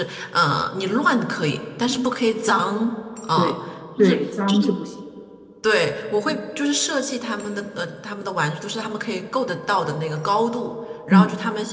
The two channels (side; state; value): both; identical; correlation 1.00